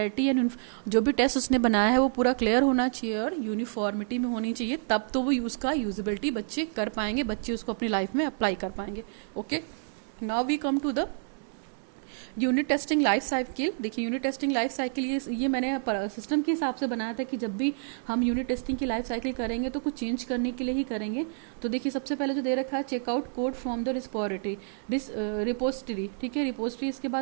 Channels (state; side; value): silent; left; digital silence